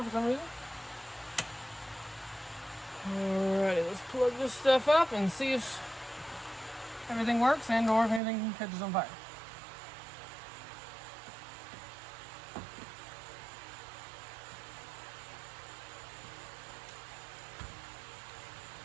for some reason. Alrighty, let's plug this stuff up and see if everything works and or if anything catches on fire.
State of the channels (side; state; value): left; drops out; at 8.2 s